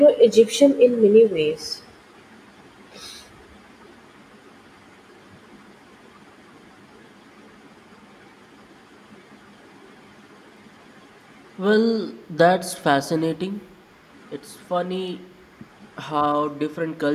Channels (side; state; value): both; identical; correlation 1.00